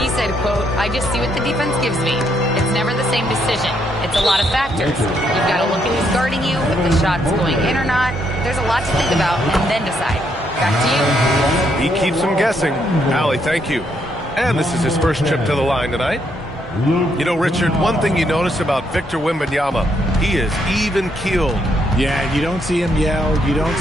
said, quote, "I just see what the defense gives me. It's never the same decision. It's a lot of factors. You've got to look at who's guarding you, if the shot's going in or not. There's a lot to think about, and then decide." Back to you. He keeps them guessing. Allie, thank you. And this is his first trip to the line tonight. You know, Richard, one thing you notice about Victor Wembanyama, he is even-keeled. Yeah, you don't see him yell. You don't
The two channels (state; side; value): normal; both; correlation 0.74